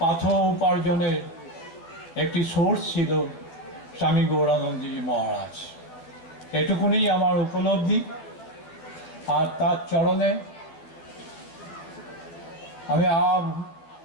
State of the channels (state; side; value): late; right; 12 ms